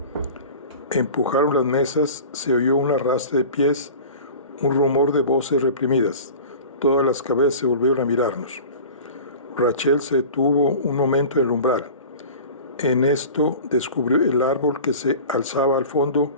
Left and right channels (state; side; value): inverted; both; correlation -0.38